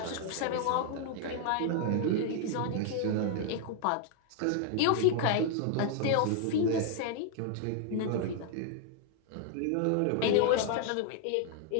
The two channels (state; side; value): different; both; correlation 0.00